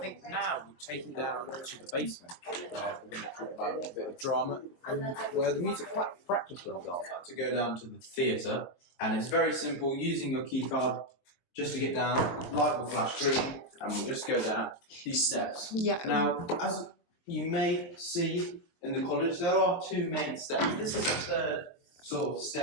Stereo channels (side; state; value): right; late; 23 ms